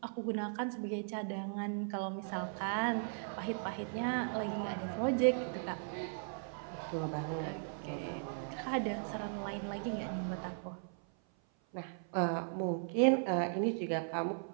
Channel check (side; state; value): left; silent; 53 dB below the other